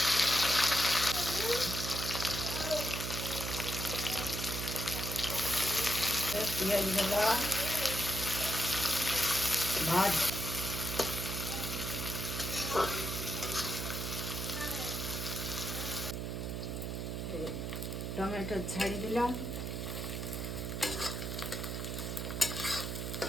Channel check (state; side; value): noise; right; hum, 3 dB below the sound